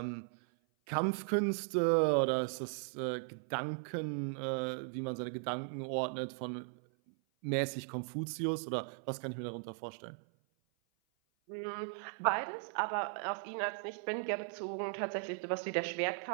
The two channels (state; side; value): silent; left; 53 dB below the other